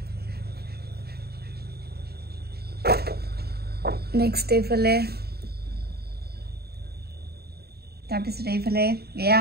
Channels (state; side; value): late; left; 0.46 ms